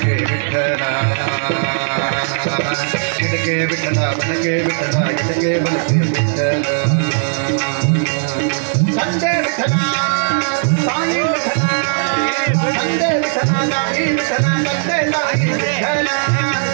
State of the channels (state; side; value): silent; left; 68 dB below the other